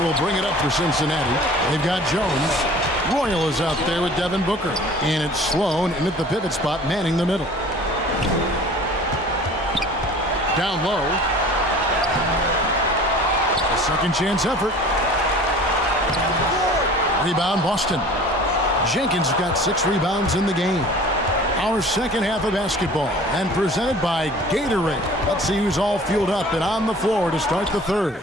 bring it up for Cincinnati. They've got Jones. Royal is out there with Devin Booker. And it's Sloan in at the pivot spot, manning the middle. Down low. A second chance effort. Rebound, Boston. Jenkins got 6 rebounds in the game. Our second half of basketball, and presented by Gatorade. Let's see who's all fueled up and on the floor to start the third.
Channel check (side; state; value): both; normal; correlation 0.45